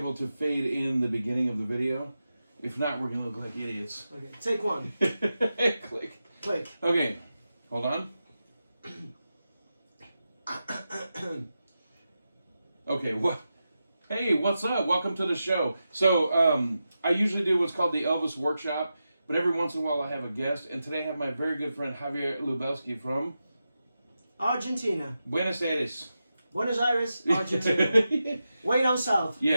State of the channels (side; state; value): both; inverted; correlation -0.90